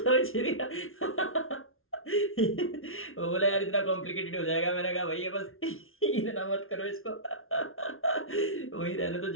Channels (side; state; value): right; late; 0.61 ms